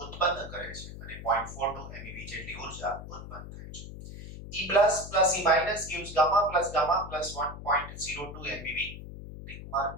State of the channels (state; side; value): noise; left; hum, 11 dB below the sound